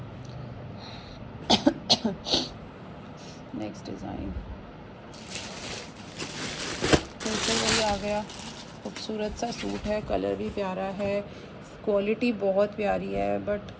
नेक्स्ट डिज़ाइन फिर से वही आ गया, खूबसूरत सा सूट है, कलर भी प्यारा है, क्वालिटी बहुत प्यारी है, बट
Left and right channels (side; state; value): both; identical; correlation 1.00